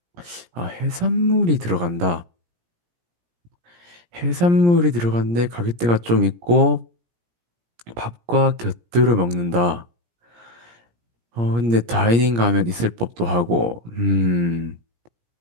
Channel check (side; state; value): left; late; 17 ms